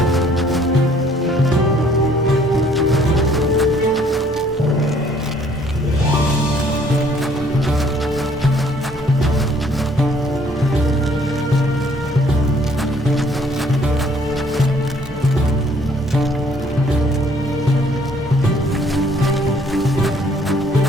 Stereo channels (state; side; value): normal; both; correlation 0.61